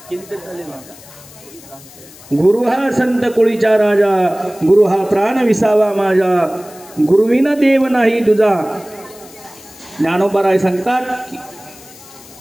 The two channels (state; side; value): noise; left; hiss, 21 dB below the sound